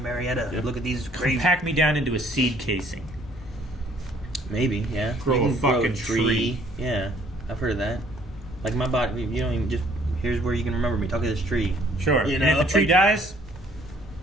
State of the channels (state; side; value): normal; both; correlation 0.61